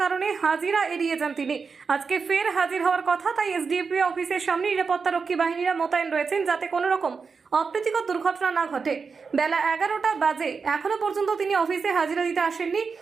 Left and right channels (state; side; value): quieter; left; 5.2 dB